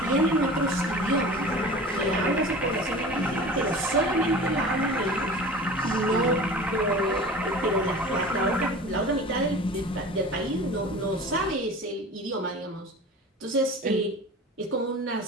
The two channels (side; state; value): both; normal; correlation 0.38